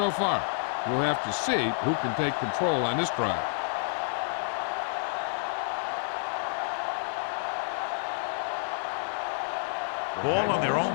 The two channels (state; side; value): silent; right; digital silence